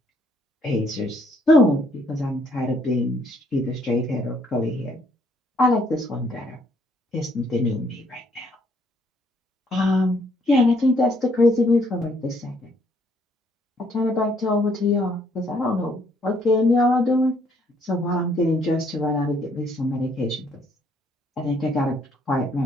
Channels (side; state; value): both; normal; correlation 0.67